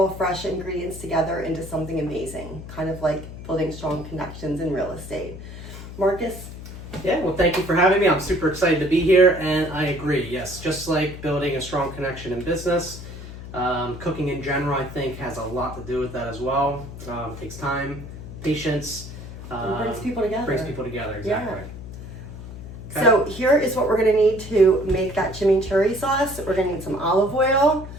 fresh ingredients together into something amazing, kind of like building strong connections in real estate. Marcus? Yeah, well, thank you for having me. I'm super excited to be here, and I agree. Yes, just like building a strong connection in business, cooking in general, I think, has a lot to do with that as well. It takes time, patience. It brings people together. Brings people together, exactly. Yeah. Okay. So here is what we're going to need to make that chimichurri sauce. We're going to need some olive oil,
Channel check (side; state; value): left; noise; hum, 12 dB below the sound